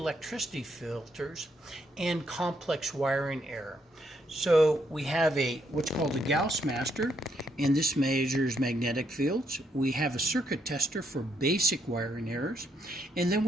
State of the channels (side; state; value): both; normal; correlation 0.75